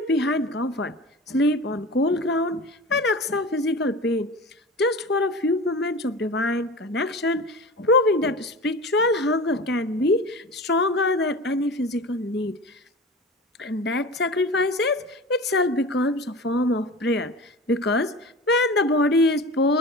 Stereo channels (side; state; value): both; normal; correlation 0.34